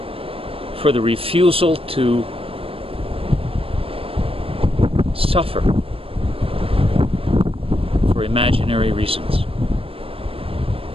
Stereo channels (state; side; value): late; left; 0.27 ms